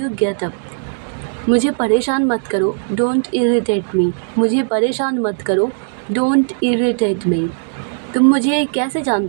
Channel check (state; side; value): silent; left; digital silence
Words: get up. मुझे परेशान मत करो, डोंट इरिटेट मी। मुझे परेशान मत करो, डोंट इरिटेट मी। तुम मुझे कैसे